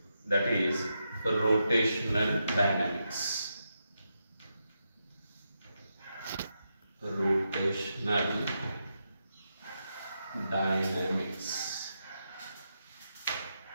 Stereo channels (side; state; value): both; inverted; correlation -0.85